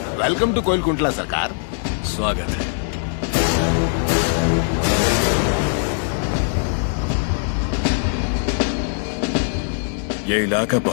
वेलकम टू कोइलकुंटला सरकार। स्वागत है। ये इलाका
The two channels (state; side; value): silent; right; digital silence